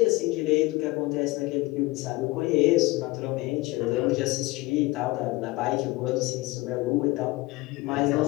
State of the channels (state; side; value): quieter; right; 21.5 dB